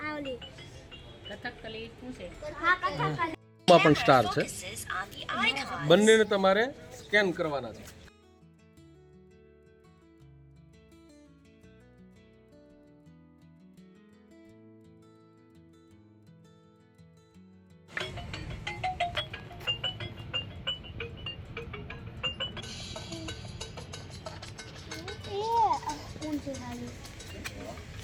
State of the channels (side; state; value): both; identical; correlation 1.00